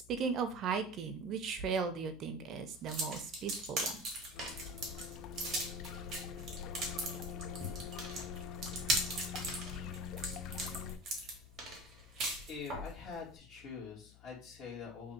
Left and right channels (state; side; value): noise; left; hum, 20 dB below the sound